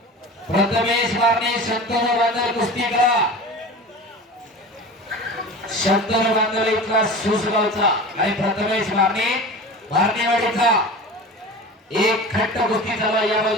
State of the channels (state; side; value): normal; both; correlation 0.34